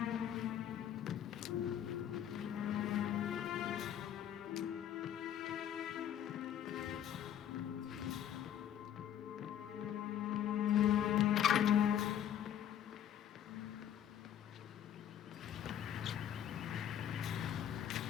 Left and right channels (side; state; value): right; quieter; 10.1 dB